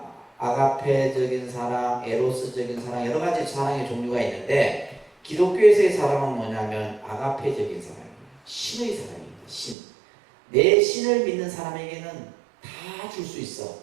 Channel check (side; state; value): left; drops out; at 9.8 s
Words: 아가페적인 사랑, 에로스적인 사랑, 여러 가지 사랑의 종류가 있는데, 기독교에서의 사랑은 뭐냐면 아가페적인 사랑입니다. 신의 사랑입니다. 신. 내 신을 믿는 사람에게는 다 줄 수